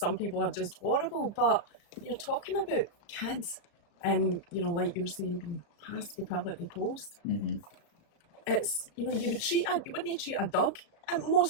people are just horrible, but you're talking about kids and, you know, like you're saying, being passed from pillar to post. It's, you know, you wouldn't treat a dog in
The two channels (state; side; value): late; right; 35 ms